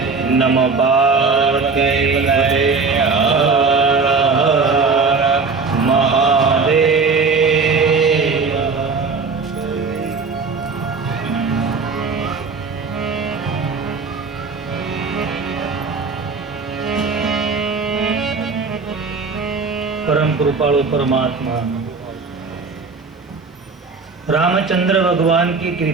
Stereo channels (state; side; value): quieter; left; 4.7 dB